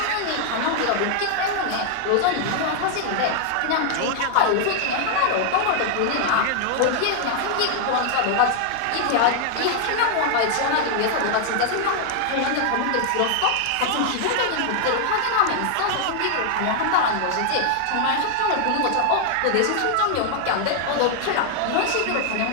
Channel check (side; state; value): both; different; correlation 0.00